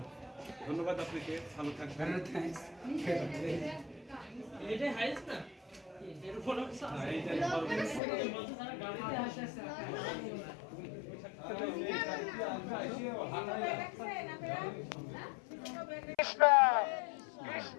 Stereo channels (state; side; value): drops out; right; at 8.0 s